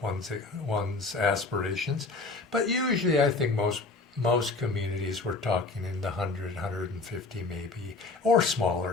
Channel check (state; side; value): quieter; right; 3.6 dB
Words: one's aspirations, but usually I think most communities we're talking in the 100, 150 maybe, or